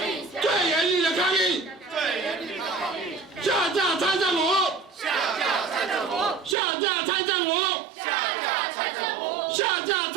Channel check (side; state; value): left; drops out; at 6.6 s